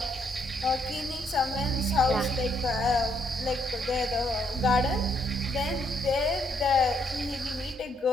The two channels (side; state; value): both; normal; correlation 0.72